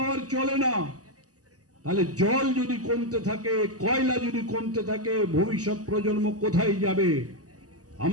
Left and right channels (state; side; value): late; left; 0.67 ms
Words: চলে না। তাহলে জল যদি কমতে থাকে, কয়লা যদি কমতে থাকে, ভবিষ্যৎ প্রজন্ম কোথায় যাবে?